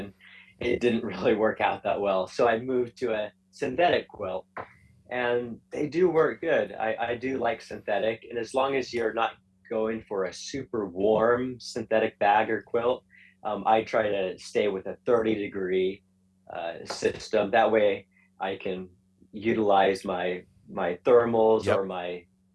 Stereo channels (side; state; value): both; identical; correlation 1.00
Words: it didn't really work out that well. So I moved to a synthetic quilt, and they do work good. I do like synthetic. And as long as you're not going for a super warm synthetic bag or quilt, I try to stay with a 30-degree system. That way I can utilize my thermals Yep. or